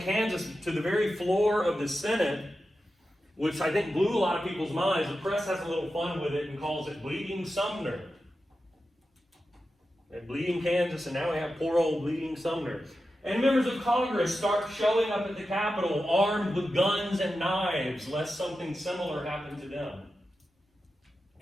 Kansas to the very floor of the Senate, which I think blew a lot of people's minds. The press has a little fun with it and calls it Bleeding Sumner. And Bleeding Kansas, and now we have poor old Bleeding Sumner. And members of Congress start showing up at the Capitol armed with guns and knives, lest something similar happen to them.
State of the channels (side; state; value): both; normal; correlation 0.91